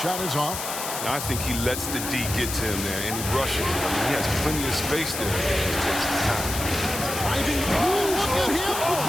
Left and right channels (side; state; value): left; noise; hiss, 5 dB below the sound